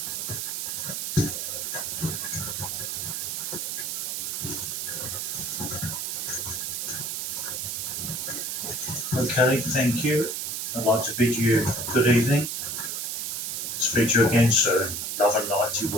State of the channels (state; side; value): noise; right; hiss, 3 dB below the sound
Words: Okay, thank you. I'd like to bid you good evening. Speak to you again soon. Love and light to